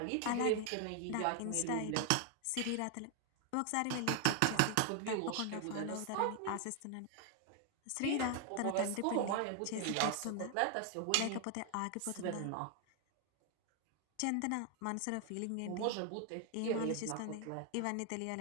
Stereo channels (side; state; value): both; different; correlation 0.00